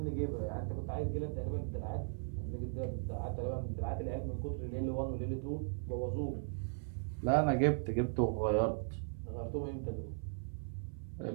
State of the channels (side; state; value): left; silent; 53 dB below the other